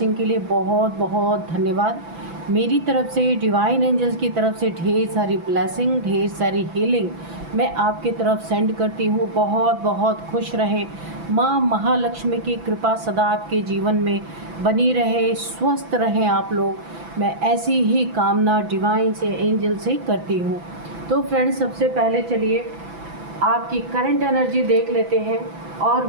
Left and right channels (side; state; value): left; late; 6.0 ms